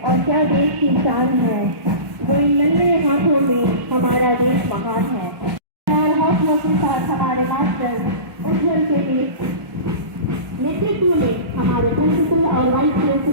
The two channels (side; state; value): left; late; 1.4 ms